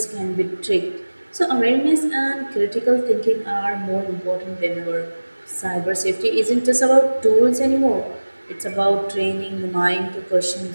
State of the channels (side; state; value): both; inverted; correlation -1.00